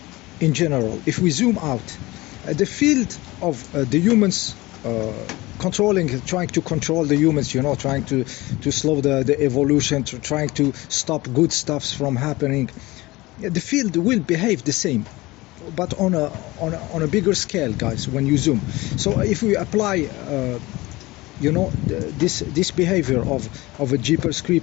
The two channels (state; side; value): quieter; right; 20.6 dB